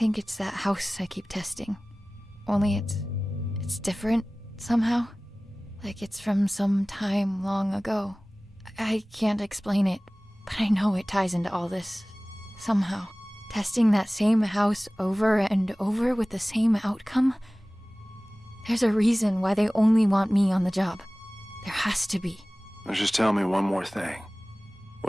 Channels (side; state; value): both; normal; correlation 0.98